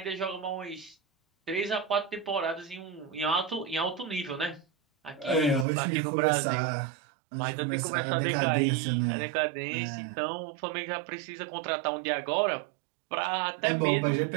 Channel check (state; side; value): drops out; left; at 5.7 s